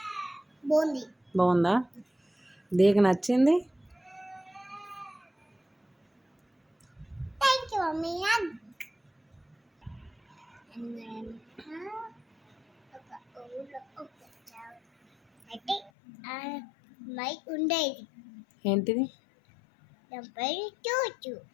బాగుందా? దీనికి నచ్చింది? ఉండేది ఏంటిది?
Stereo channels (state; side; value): drops out; right; at 15.9 s